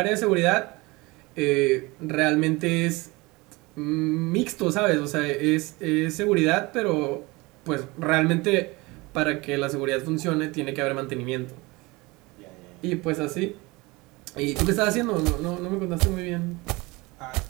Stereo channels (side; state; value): left; quieter; 23.6 dB